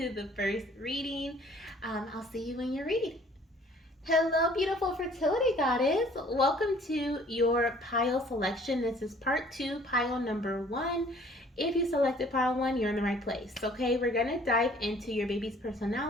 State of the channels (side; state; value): both; normal; correlation 0.55